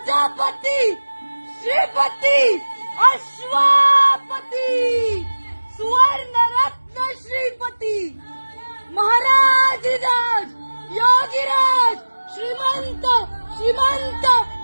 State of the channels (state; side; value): inverted; both; correlation -1.00